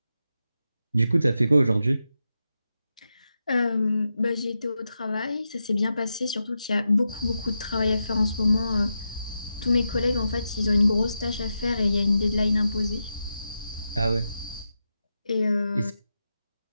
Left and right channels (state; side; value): inverted; both; correlation -0.88